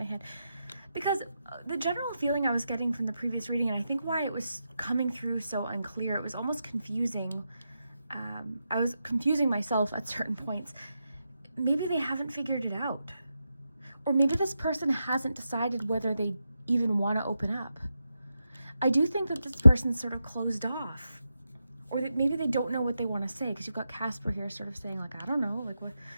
hand. Because the general feeling I was getting from the previous reading, and I think why it was coming through so unclear, it was almost confusing. I was confusing myself at certain points. Maybe they haven't figured it out. Or maybe this person hasn't decided whether they even want to open up. I do think that this person's sort of closed off. Or that maybe they don't know what they want to say, because you've got Casper here sort of saying, like, I don't know, like what.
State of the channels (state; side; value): inverted; both; correlation -0.87